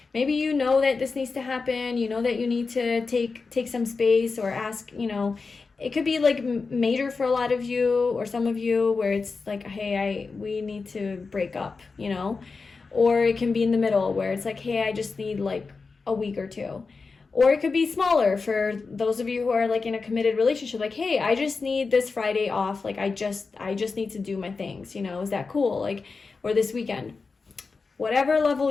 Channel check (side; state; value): right; quieter; 4.4 dB